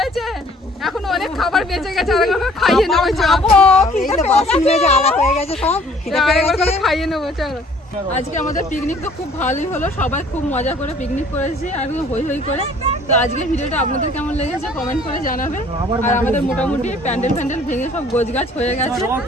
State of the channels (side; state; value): both; normal; correlation 0.56